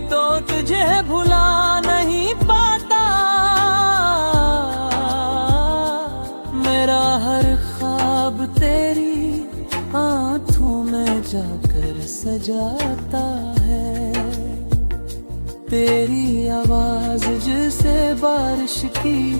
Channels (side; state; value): both; inverted; correlation -1.00